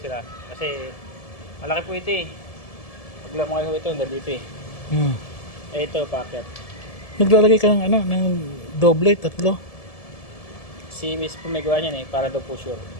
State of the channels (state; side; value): late; right; 1.7 ms